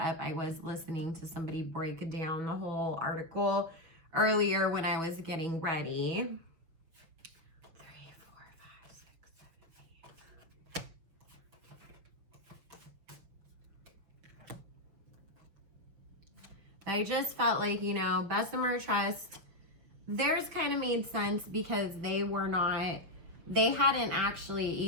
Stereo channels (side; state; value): left; late; 6.5 ms